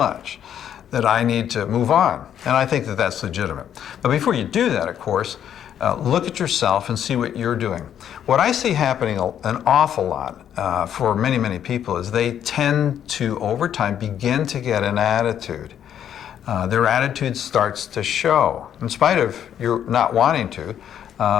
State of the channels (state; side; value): quieter; right; 9.7 dB